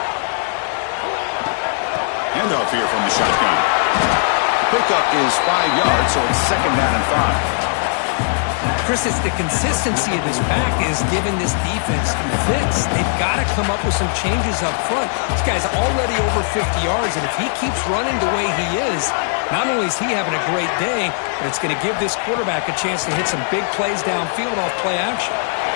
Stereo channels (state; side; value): silent; right; 67 dB below the other